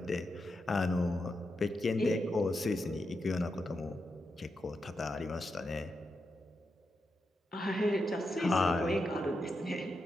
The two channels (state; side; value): normal; both; correlation 0.86